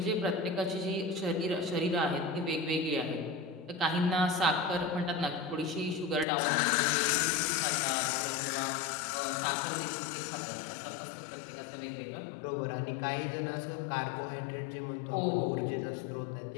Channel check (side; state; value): right; drops out; at 6.2 s